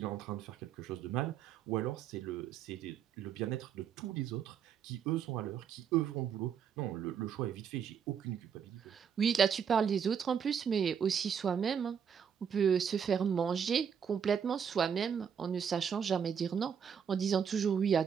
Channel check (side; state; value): left; quieter; 7.5 dB